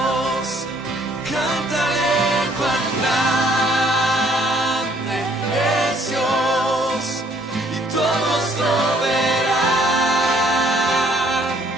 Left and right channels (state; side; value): normal; both; correlation 0.63